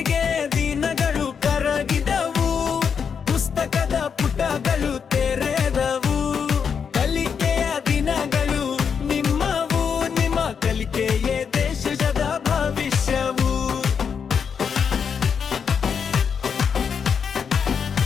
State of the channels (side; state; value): right; quieter; 6.7 dB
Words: ದಿನಗಳು ಕರಗಿದವು, ಪುಸ್ತಕದ ಪುಟಗಳು ತೆರೆದವು. ಕಲಿಕೆಯ ದಿನಗಳು ನಿಮ್ಮವು, ನಿಮ್ಮ ಕಲಿಕೆಯೇ ದೇಶದ ಭವಿಷ್ಯವು.